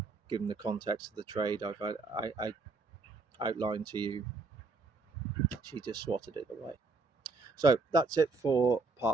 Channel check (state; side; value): quieter; left; 3.8 dB